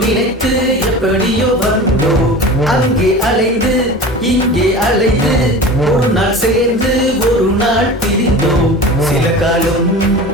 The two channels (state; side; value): normal; both; correlation 0.35